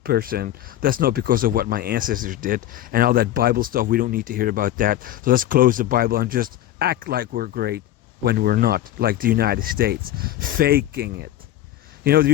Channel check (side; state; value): right; quieter; 13.2 dB